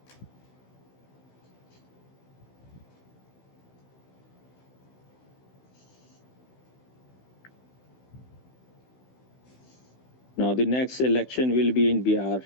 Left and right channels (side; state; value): right; late; 16 ms